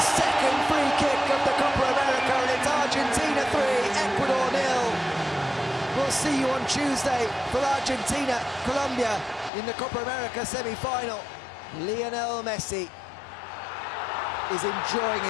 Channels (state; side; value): drops out; right; at 9.5 s